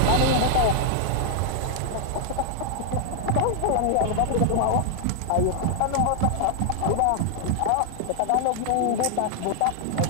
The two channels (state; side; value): different; both; correlation -0.01